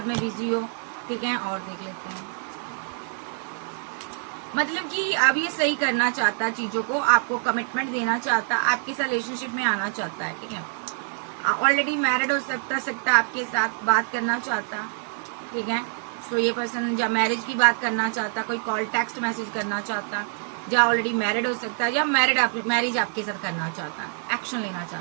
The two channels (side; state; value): left; silent; 61 dB below the other